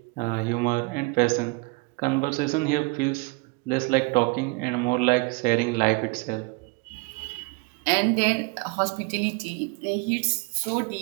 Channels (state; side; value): quieter; left; 27.9 dB